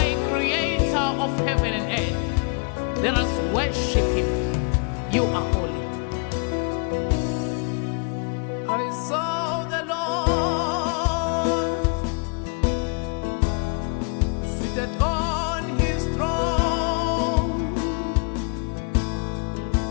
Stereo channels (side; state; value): right; quieter; 36.5 dB